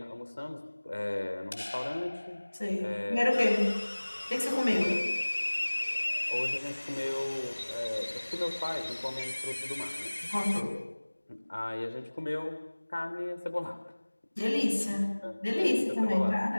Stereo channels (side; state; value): both; inverted; correlation -1.00